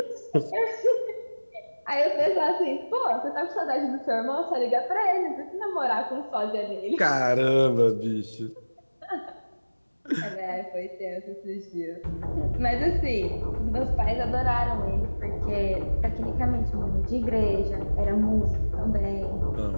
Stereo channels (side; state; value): both; inverted; correlation -1.00